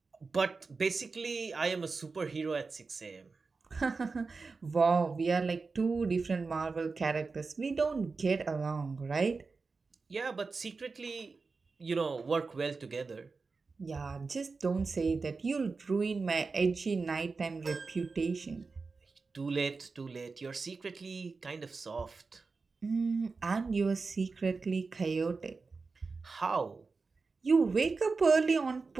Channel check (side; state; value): left; quieter; 4.3 dB